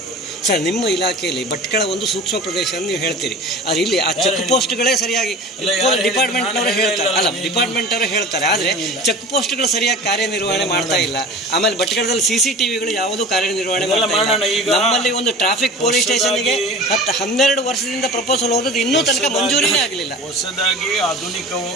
ಸರ್, ನಿಮ್ಮ ಇಲಾಖೆಯಲ್ಲಿ ಭಟ್ಕಳ ಒಂದು ಸೂಕ್ಷ್ಮ ಪ್ರದೇಶ ಅಂತ ನೀವು ಹೇಳ್ತೀರಿ. ಆದರೆ ಇಲ್ಲಿ ಆ ಚೆಕ್ ಪೋಸ್ಟ್ಗಳೇ ಸರಿಯಾಗಿ ಡಿಪಾರ್ಟ್ಮೆಂಟ್ನವರು ಹೇಳ್ತಾರೆ. ಆದರೆ ಚೆಕ್ ಪೋಸ್ಟ್ಗಳು ಸರಿಯಾಗಿ ಕಾರ್ಯನಿರ್ವಹಣೆ ಮಾಡ್ತಾ ಇಲ್ಲ. ಆಮೇಲೆ ಭಟ್ಕಳದಲ್ಲಿ CCTVಗಳು ಯಾವುದೂ ಕಾರ್ಯನಿರ್ವಹಣೆ ಮಾಡ್ತಾ ಇಲ್ಲ. ನಮ್ಮಲ್ಲಿ ಒಂದು ಟ್ರಾಫಿಕ್ ಪೊಲೀಸ್ ಸ್ಟೇಷನ್ಗೆ 12 ವರ್ಷದಿಂದ ಪ್ರಪೋಸಲ್ ಹೋಗೋದು ಇನ್ನೂ ತನಕ ಮಂಜೂರಿನೇ ಆಗಲಿಲ್ಲ. ಹೊಸದಾಗಿ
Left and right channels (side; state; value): both; normal; correlation 0.37